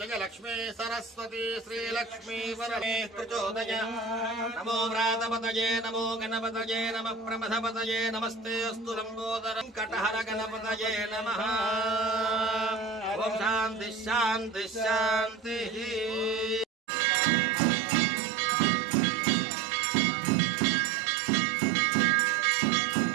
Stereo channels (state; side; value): drops out; left; at 16.7 s